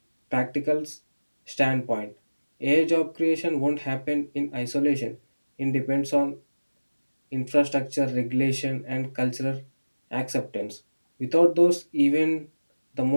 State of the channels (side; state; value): both; inverted; correlation -1.00